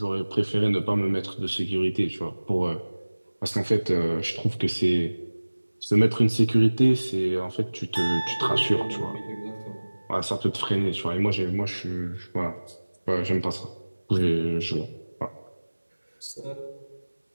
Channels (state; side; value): inverted; both; correlation -1.00